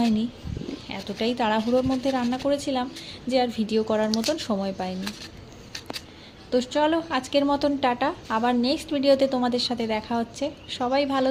এতটাই তাড়াহুড়োর মধ্যে রান্না করেছিলাম যে আর ভিডিও করার মতন সময় পাইনি। তো চলো আজকের মতন টাটা, আবার নেক্সট ভিডিওতে তোমাদের সাথে দেখা হচ্ছে। সবাই ভালো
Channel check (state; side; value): identical; both; correlation 1.00